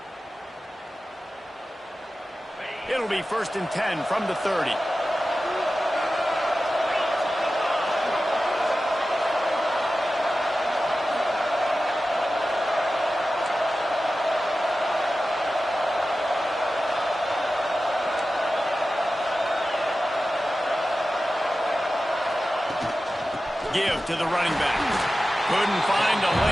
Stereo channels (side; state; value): both; normal; correlation 0.94